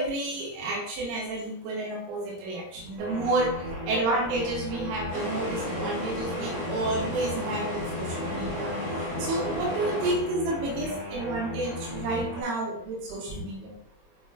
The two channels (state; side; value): late; left; 22 ms